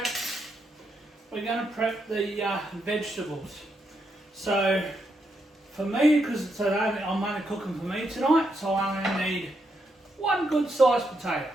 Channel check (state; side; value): normal; both; correlation 0.81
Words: the vegetables. So for me, because I'm only cooking for me tonight, so I only need one good sized potato.